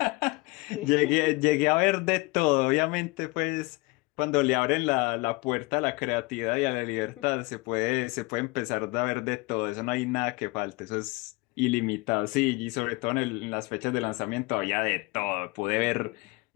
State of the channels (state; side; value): quieter; right; 24.9 dB